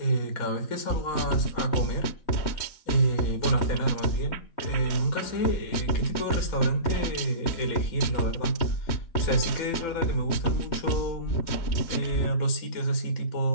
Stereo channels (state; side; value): late; right; 3.2 ms